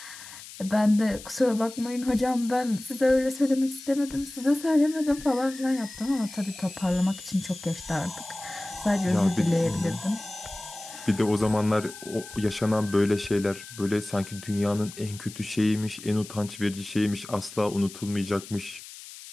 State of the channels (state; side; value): noise; left; hiss, 15 dB below the sound